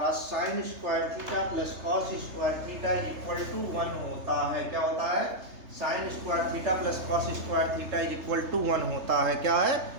sine square theta plus cos square theta is equal to 1 होता है। क्या होता है, sine square theta plus cos square theta is equal to 1 होता है। क्या है,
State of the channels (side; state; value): left; late; 3.3 ms